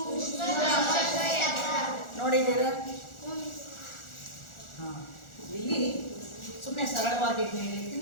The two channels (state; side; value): late; right; 1.4 ms